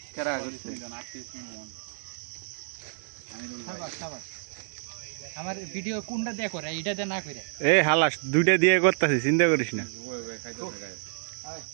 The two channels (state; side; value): silent; left; digital silence